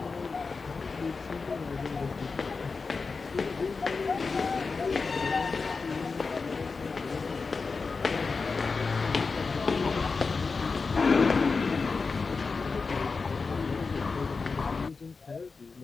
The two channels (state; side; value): quieter; right; 4.5 dB